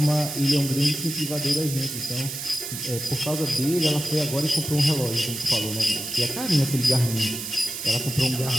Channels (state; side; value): noise; right; hiss, 7 dB below the sound